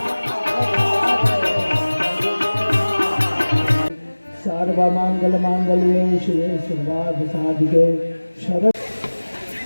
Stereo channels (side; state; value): both; inverted; correlation -1.00